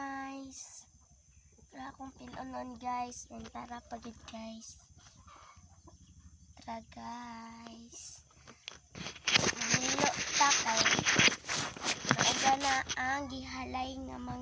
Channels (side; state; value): both; identical; correlation 1.00